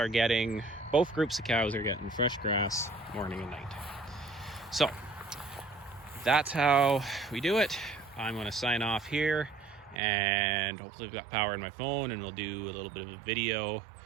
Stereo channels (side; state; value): left; drops out; at 10.0 s